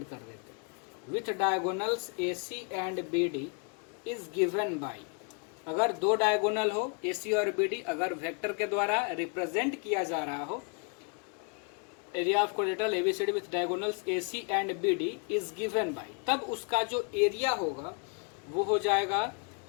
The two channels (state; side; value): quieter; right; 37.2 dB